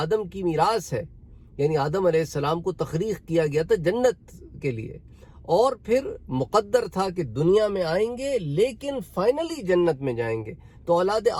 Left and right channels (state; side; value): identical; both; correlation 1.00